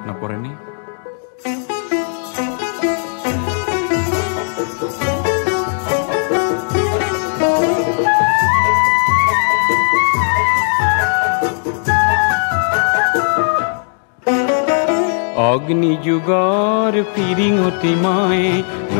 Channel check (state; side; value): silent; right; digital silence